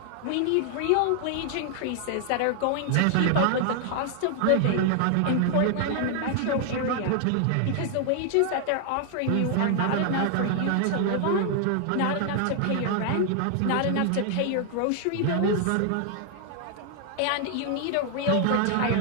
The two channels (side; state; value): both; different; correlation 0.00